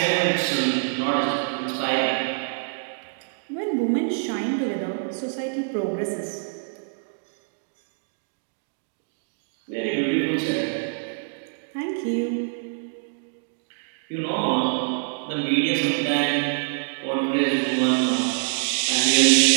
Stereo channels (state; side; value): silent; left; digital silence